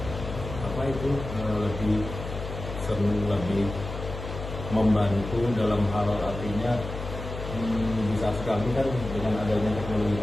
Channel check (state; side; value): noise; left; hum, 8 dB below the sound